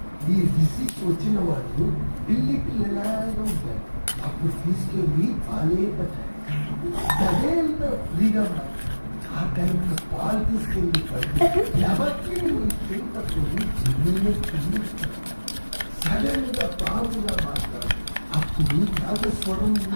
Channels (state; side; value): inverted; both; correlation -1.00